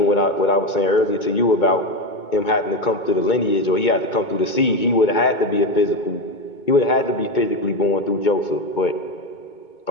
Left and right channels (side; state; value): right; late; 2.2 ms